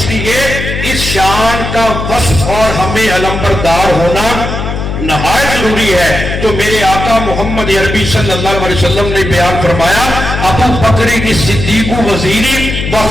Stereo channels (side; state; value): left; noise; hum, 5 dB below the sound